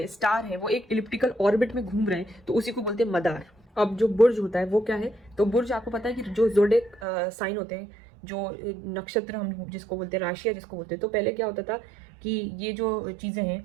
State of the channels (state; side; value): drops out; left; at 7.1 s